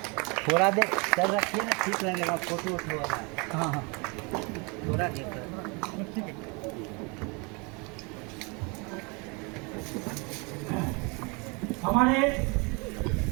थोड़ा देर कर रखिए ना, ठीक लगेगा फोटो वोटो वाला। हाँ हाँ थोड़ा देर हमारे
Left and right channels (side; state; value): left; quieter; 30.4 dB